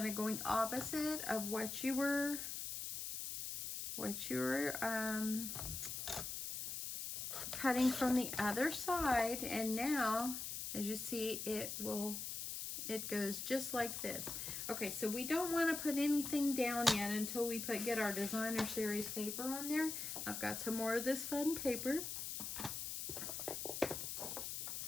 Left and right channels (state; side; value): noise; left; hiss, 4 dB below the sound